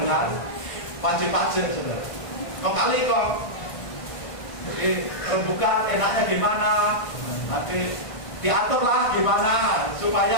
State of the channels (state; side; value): late; right; 1.5 ms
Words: wajib pajak, saudara. Kong kali kong. Jadi rembukan enaknya gimana, nanti diaturlah gimana